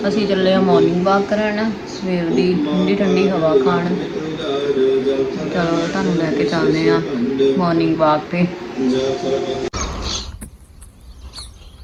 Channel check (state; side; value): identical; both; correlation 1.00